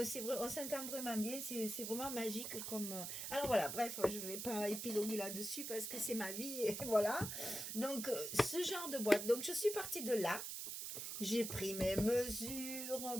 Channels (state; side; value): noise; right; hiss, 5 dB below the sound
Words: s'entend vraiment bien, c'est vraiment magique comme... Alors voilà, bref, je ne vais pas épiloguer là-dessus parce que c'est ma vie, et voilà. Donc, ce genre de boîte. Donc, je suis partie de là. J'ai pris mes mesures